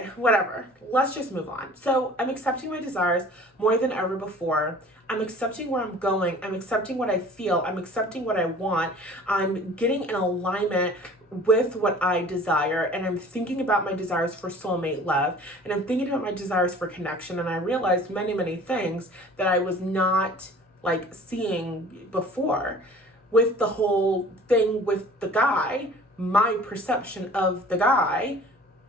whatever. Let's just move on. So I'm accepting my desires more than ever before. I'm accepting where I'm going. I'm accepting what I feel. I'm accepting what I want. I'm getting in alignment with what I desire. And I'm thinking about my desires for soulmate love. And I'm thinking about my desires for connection. And I realized many, many things that I was not like seeing before. With the whole thing with the guy, my perception of the guy,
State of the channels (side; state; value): both; normal; correlation 0.47